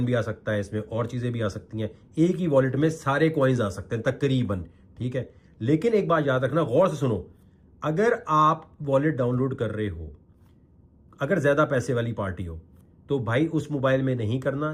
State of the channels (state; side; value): identical; both; correlation 1.00